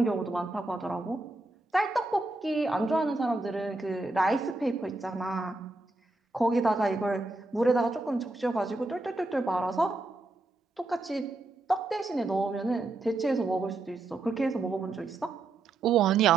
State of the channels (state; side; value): quieter; left; 3.0 dB